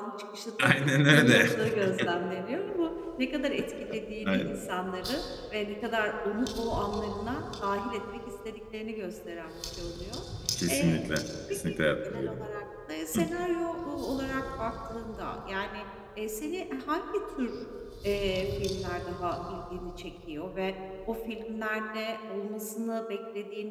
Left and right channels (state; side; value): identical; both; correlation 1.00